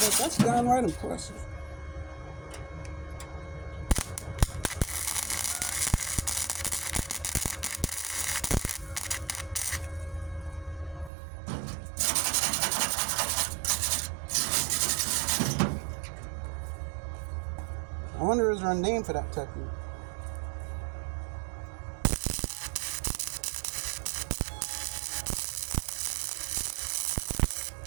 like, that's downright impressive. I wonder, is there a name for that technique?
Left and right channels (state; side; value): drops out; left; at 11.1 s